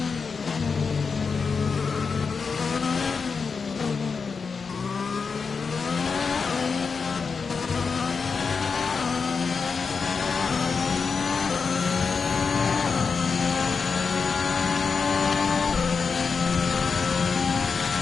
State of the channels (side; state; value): right; quieter; 5.2 dB